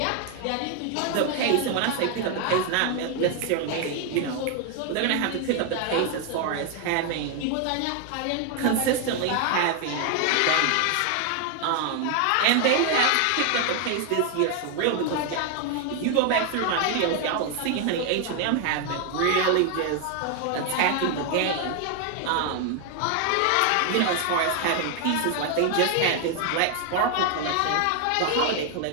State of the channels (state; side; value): different; both; correlation 0.01